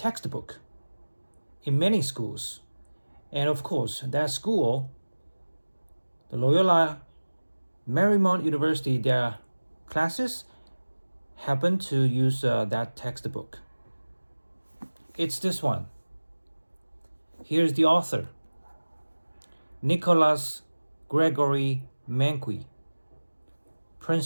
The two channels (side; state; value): both; inverted; correlation -1.00